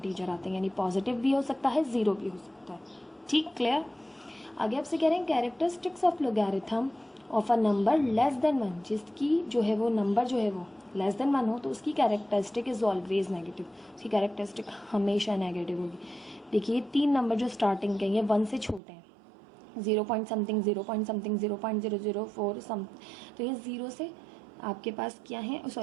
आते हैं, यानी पॉजिटिव भी हो सकता है, ज़ीरो भी हो सकता है। ठीक, क्लियर। आगे आपसे कह रहे हैं characteristics of logarithm of a number less than 1, जिसकी जो है वो नंबर जो है वो लेस देन 1 हो तो उसकी कैरेक्टरिस्टिक इज ऑलवेज नेगेटिव, उसकी कैरेक्टरिस्टिक हमेशा नेगेटिव होगी। देखिए 3 नंबर जो स्टार्टिंग के ये 1 से छोटे हैं, 0 पॉइंट समथिंग 0 पॉइंट समथिंग 0.004 सम, तो ये 0 से आपके पास क्या है,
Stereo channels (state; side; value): drops out; left; at 18.8 s